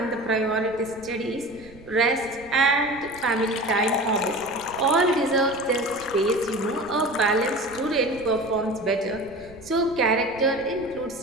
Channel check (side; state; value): right; noise; rumble, 21 dB below the sound